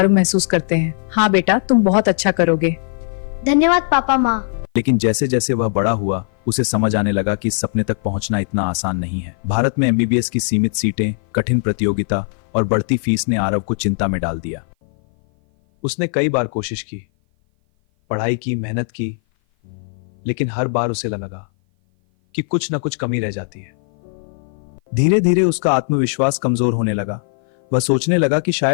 महसूस करते हैं। हाँ बेटा, तुम बहुत अच्छा करोगे। धन्यवाद पापा माँ। लेकिन जैसे जैसे वह बड़ा हुआ, उसे समझ आने लगा कि इस सपने तक पहुंचना इतना आसान नहीं है। भारत में एमबीबीएस की सीमित सीटें, कठिन प्रतियोगिता और बढ़ती फीस ने आरव को चिंता में डाल दिया। उसने कई बार कोशिश की, पढ़ाई की, मेहनत की, लेकिन हर बार उसे लगा कि कुछ न कुछ कमी रह जाती है। धीरे धीरे उसका आत्मविश्वास कमजोर होने लगा। वह सोचने लगा कि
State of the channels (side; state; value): right; silent; 56 dB below the other